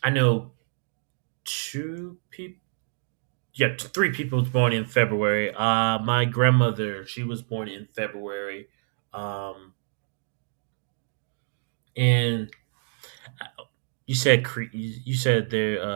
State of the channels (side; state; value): left; silent; digital silence